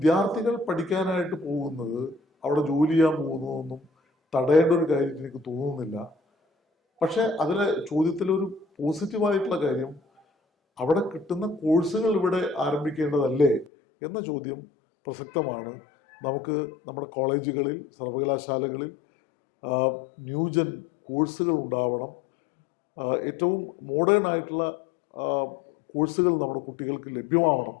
പഠിക്കാനായിട്ട് പോകുന്നത്, അവിടെ ജോലി ചെയ്യാൻ പോകുന്നതൊന്നും തടയേണ്ട ഒരു കാര്യം എനിക്ക് തോന്നുന്നില്ല. പക്ഷെ അതിലെ ചോദ്യത്തിലൊരു പോസിറ്റീവായിട്ടുള്ള കാര്യം, അവിടെ കിട്ടുന്ന കോഴ്സുകൾ ഇവിടെ ആരംഭിക്കേണ്ടതല്ലേ എന്ന ചോദ്യം പ്രസക്തമാണ്. നമുക്ക് നമ്മുടെ കോളേജുകളിൽ, സർവകലാശാലകളിൽ ന്യൂജൻ കോഴ്സുകൾ ഉണ്ടാവണം. ഏറ്റവും മോഡേൺ ആയിട്ടുള്ള കോഴ്സുകൾ നമ്മുടെ കുട്ടികൾക്ക് ലഭ്യമാവണം.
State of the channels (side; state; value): right; drops out; at 13.7 s